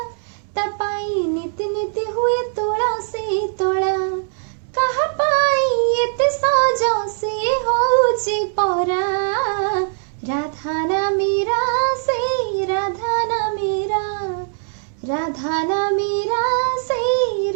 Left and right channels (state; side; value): silent; left; 65 dB below the other